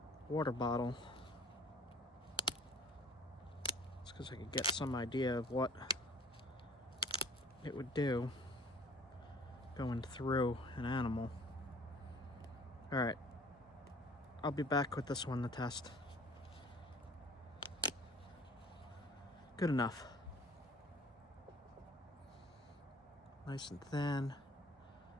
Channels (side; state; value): both; normal; correlation 0.51